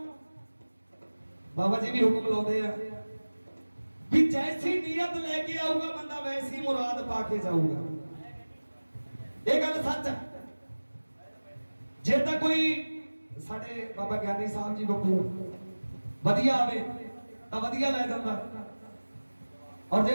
ਬਾਬਾ ਜੀ ਵੀ ਹੁਕਮ ਲਾਉਂਦੇ ਆ ਵੀ ਜੈਸੀ ਨੀਅਤ ਲੈ ਕੇ ਆਊਗਾ ਬੰਦਾ ਵੈਸੀ ਮੁਰਾਦ ਪਾ ਕੇ ਜਾਊਗਾ ਇਹ ਗੱਲ ਸੱਚ ਹੈ ਜੇ ਤਾਂ ਕੋਈ ਸਾਡੇ ਬਾਬਾ ਗਿਆਨੀ ਸਾਹਿਬ ਜੀ ਬੱਬੂ ਵਧੀਆ ਆਵੇ ਤਾਂ ਵਧੀਆ ਲੈ ਜਾਂਦਾ ਔਰ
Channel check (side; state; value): both; inverted; correlation -1.00